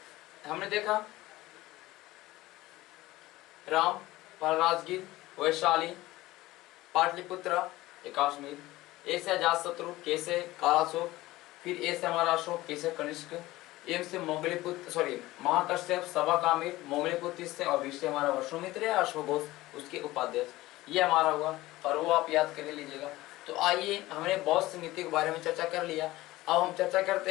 हमने देखा राम, राजगीर, वैशाली, पाटलिपुत्र, कश्मीर, ए से अजातशत्रु, के से कालाशोक, फिर ए से हमारा अशोक, के से कनिष्क, एम से मोगलीपुत्र, सॉरी महाकश्यप, सवाकामिर, मोगलीपुत्र से, और वी से हमारा वसुमित्र या अश्वघोष, उसके उपाध्यक्ष, ये हमारा हुआ, और वो आप याद कर लीजिएगा। तो आइए, हमने बौद्ध संगीति के बारे में चर्चा कर लिया। अब हम चर्चा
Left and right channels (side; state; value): right; quieter; 17.9 dB